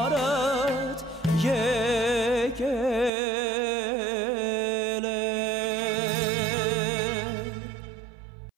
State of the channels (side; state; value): left; drops out; at 3.1 s